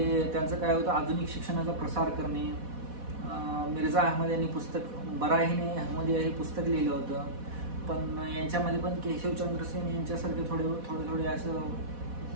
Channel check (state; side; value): late; left; 4.1 ms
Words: त्यांचं काय होतं, आधुनिक शिक्षणाचा प्रसार करणे. मिर्झा अहमद यांनी पुस्तक बराहिने अहमदिया हे पुस्तक लिहिलं होतं. पण यांच्यामध्ये पण केशवचंद्र सेन यांच्यासारखे थोडे असं